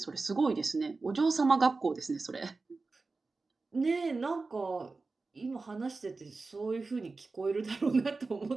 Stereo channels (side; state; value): left; quieter; 3.8 dB